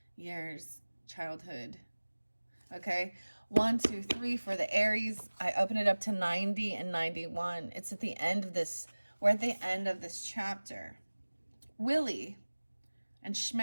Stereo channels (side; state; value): both; inverted; correlation -1.00